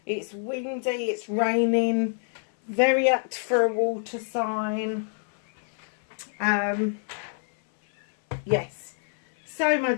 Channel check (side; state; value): right; silent; 61 dB below the other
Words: It's windy, it's raining, very apt for a water sign. Yes. So my